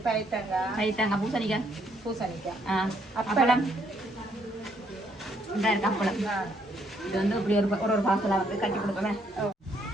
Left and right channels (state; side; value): normal; both; correlation 0.70